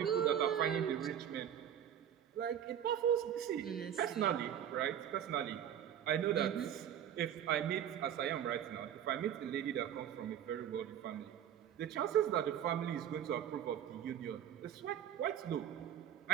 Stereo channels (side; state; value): left; quieter; 9.8 dB